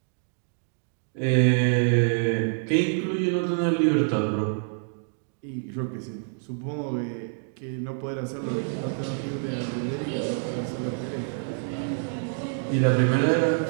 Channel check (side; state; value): left; silent; digital silence